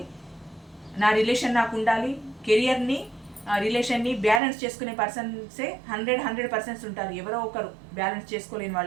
నా రిలేషన్ నాకు ఉండాలి, కెరియర్ని రిలేషన్ని బ్యాలెన్స్ చేసుకునే పర్సన్సే 100% ఉంటారు. ఎవరో ఒకరు బ్యాలెన్స్ చేసుకోలేని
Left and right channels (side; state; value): left; drops out; at 4.4 s